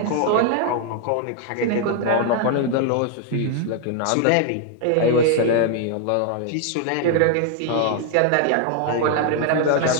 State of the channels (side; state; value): both; different; correlation 0.00